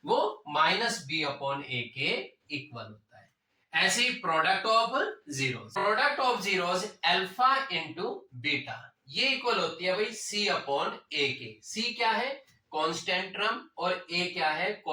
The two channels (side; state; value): both; identical; correlation 1.00